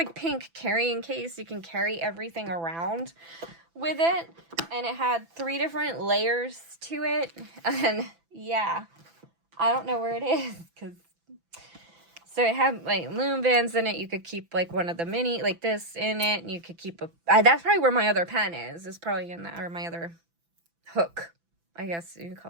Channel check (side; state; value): left; late; 6.0 ms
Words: pink carrying case. You can carry everything around with it. And it had 3 different layers to it. And, yeah. I don't know where it is, because... So it had, like, loom bands in it. You could keep, like, one of the mini, like, this in it. And you could keep a... that's probably where my other pen is. It's probably in that, or my other hook. I guess you can